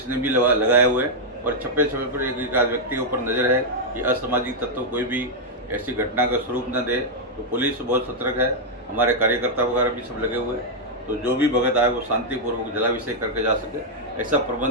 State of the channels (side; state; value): both; normal; correlation -0.02